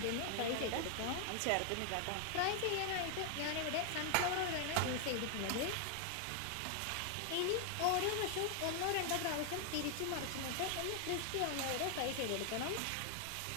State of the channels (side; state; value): both; different; correlation 0.00